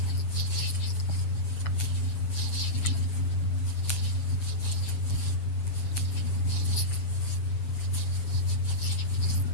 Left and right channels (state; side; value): late; right; 7.7 ms